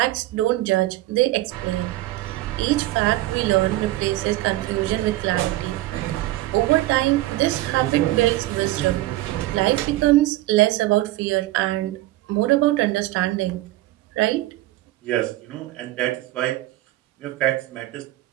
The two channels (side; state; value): left; quieter; 16.8 dB